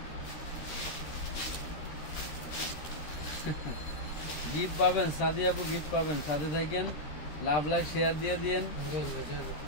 গিফট পাবেন, সাদি আপু গিফট পাবেন। সাথে থাকেন, লাভ লাইক শেয়ার দিয়ে দিয়েন।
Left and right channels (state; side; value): late; right; 13 ms